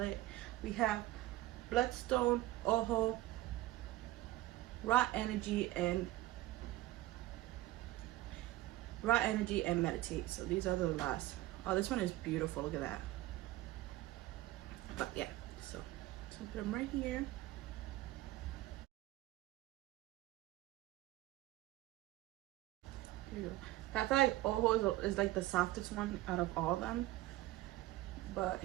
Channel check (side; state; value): left; quieter; 16.8 dB